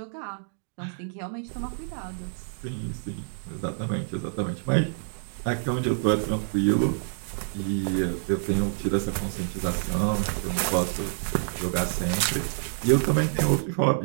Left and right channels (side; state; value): left; silent; digital silence